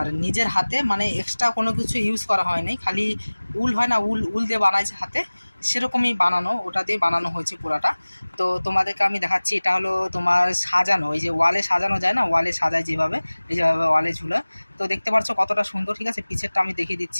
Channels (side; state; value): both; inverted; correlation -1.00